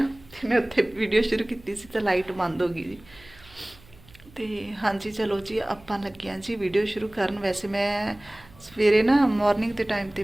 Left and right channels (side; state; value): right; noise; hum, 25 dB below the sound